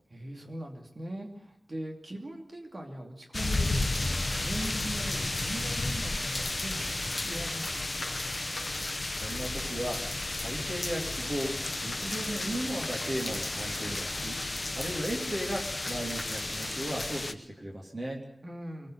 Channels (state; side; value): normal; both; correlation 0.97